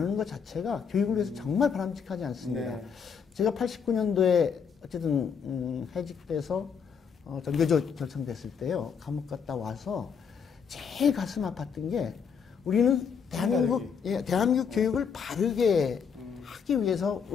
것 자체가 교육을 위해서 정말 바람직하지 않습니다. 네. 제가 89년도에 어쨌든 해직돼서 전교조 결성됐을 때요. 감옥 갔다 와서 제일 가슴 아팠던 게 우리는 대한민국 교육을 바르게 하기 위해서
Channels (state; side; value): quieter; right; 6.6 dB